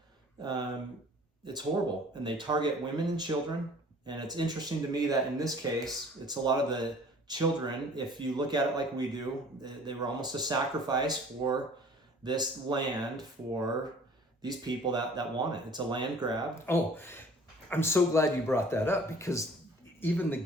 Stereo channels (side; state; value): both; normal; correlation 0.50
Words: it's horrible, and they target women and children. And it's interesting to me that in this case, it's a lot of the children. If you look at it like we do, they were almost a sacrifice for this land, for these people that want it. It's a land grab. Oh, I'm so glad you brought that up, because even the